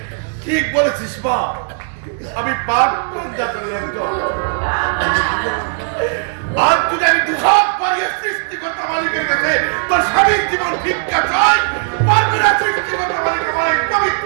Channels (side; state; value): left; silent; 67 dB below the other